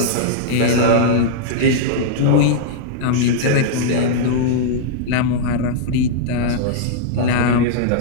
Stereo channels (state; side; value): different; both; correlation -0.02